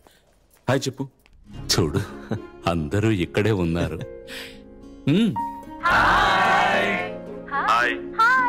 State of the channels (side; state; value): both; identical; correlation 1.00